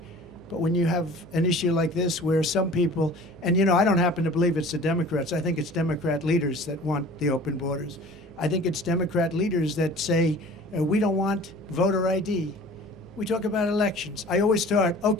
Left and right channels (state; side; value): noise; left; hum, 28 dB below the sound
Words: But when you have an issue like this where some people, and I don't happen to believe it's the Democrats. I think it's Democrat leaders that want the open borders. I think it's Democrat leaders that say, we don't want voter ID. We talk about elections. I always start,